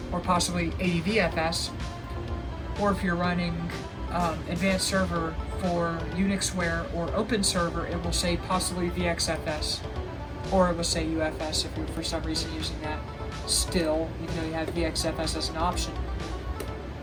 or possibly ADVFS. Or if you're running Advanced Server for Unixware or Open Server, it will say possibly VXFS, or it will say UFS if you're for some reason using that still, even though you have VXFS as an option.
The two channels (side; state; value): both; identical; correlation 1.00